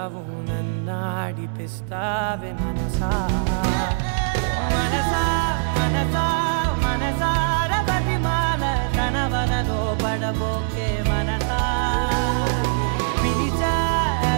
నన్నాడిపిస్తావే మనసా మనసా మనసా మనసార బతిమాల తన వలలో పడబోకే మనసా పిలిచా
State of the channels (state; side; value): silent; left; 64 dB below the other